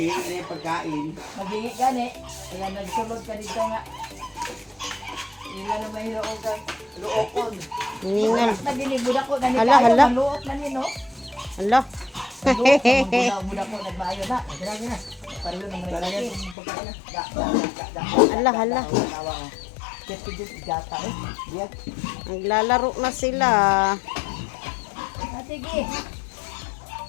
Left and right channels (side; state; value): right; drops out; at 16.6 s